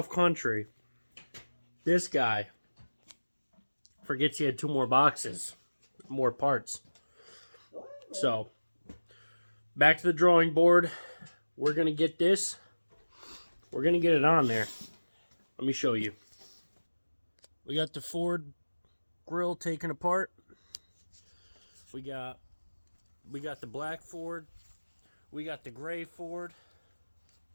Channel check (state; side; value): inverted; both; correlation -1.00